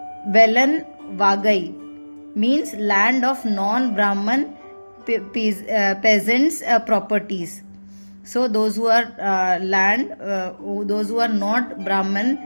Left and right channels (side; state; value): both; inverted; correlation -1.00